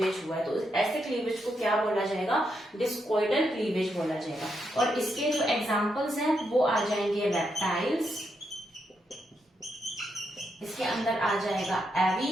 हुआ है, तो ऐसे क्लीवेज को क्या बोला जाएगा, डिस्कॉइडल क्लीवेज बोला जाएगा। और इसके जो एग्जांपल्स हैं वो आ जाएंगे रेप्टाइल्स, इसके अंदर आ जाएगा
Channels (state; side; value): normal; both; correlation 0.81